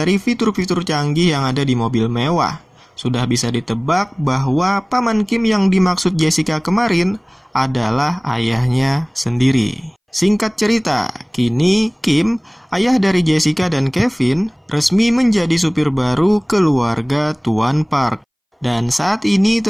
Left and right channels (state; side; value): identical; both; correlation 1.00